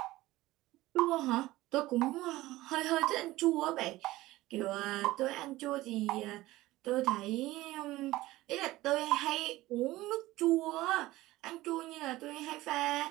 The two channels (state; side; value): quieter; left; 17.7 dB